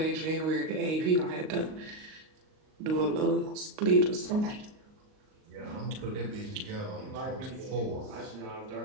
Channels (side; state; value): left; late; 38 ms